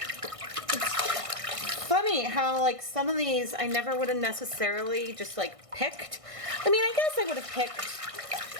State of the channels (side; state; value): left; late; 1.6 ms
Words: Funny how like some of these I never would have necessarily just like picked. I mean, I guess I would have